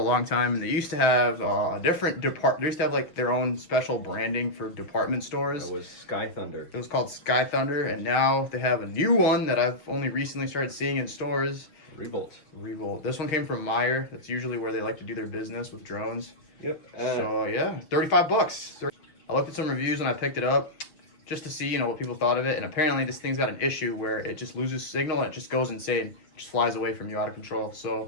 long time, and they used to have a different They used to have like their own special branding for department stores. It was Sky Thunder. It was called Sky Thunder, and now they have a new one that I've only recently started seeing in stores. Revolt. Revolt. This one came from Meyer. That's usually where they like to do their business with drones. Yep. So yeah, $35. I looked at some reviews when I picked it up, just to see, you know, what people thought of it. And apparently this thing's got an issue where it just loses signal and it just goes insane. It just flies away from you out of control.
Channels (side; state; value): right; late; 6.6 ms